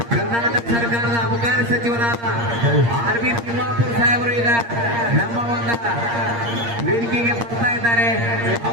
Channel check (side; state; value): left; late; 8.6 ms